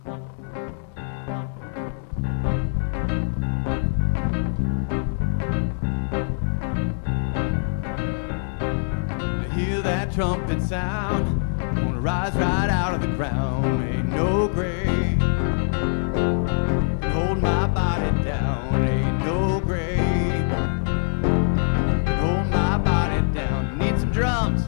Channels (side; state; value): right; silent; 63 dB below the other